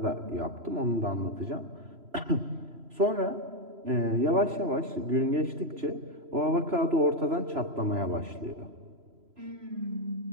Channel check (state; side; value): late; left; 3.0 ms